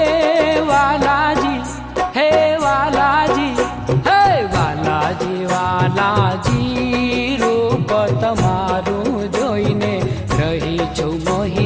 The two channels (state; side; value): identical; both; correlation 1.00